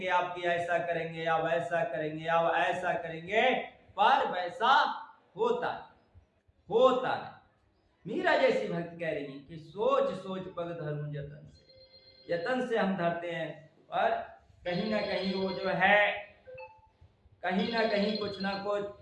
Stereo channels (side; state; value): both; identical; correlation 1.00